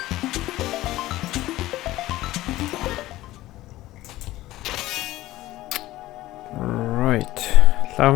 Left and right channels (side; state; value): right; quieter; 16.6 dB